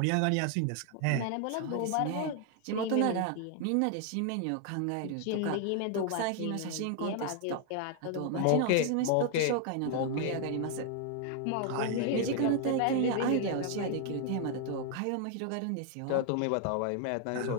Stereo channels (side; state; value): both; different; correlation 0.00